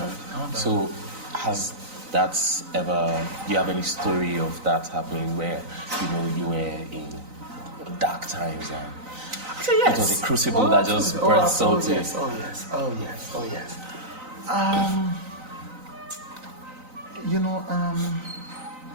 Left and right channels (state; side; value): late; left; 3.9 ms